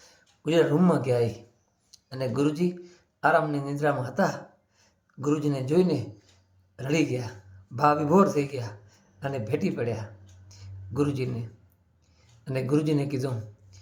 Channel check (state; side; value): identical; both; correlation 1.00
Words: ગુરુજીના રૂમમાં ગયા એ. અને ગુરુજી આરામની નિદ્રામાં હતા. ગુરુજીને જોઈને રડી ગયા, ભાવ વિભોર થઈ ગયા અને ભેટી પડ્યા ગુરુજીને. અને ગુરુજીને કીધું